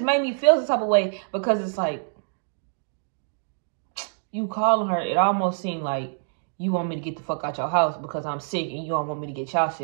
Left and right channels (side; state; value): left; silent; digital silence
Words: made me feel some type of way, because it's like, you calling her, it almost seemed like you want me to get the fuck out your house because I'm sick and you don't want me to get y'all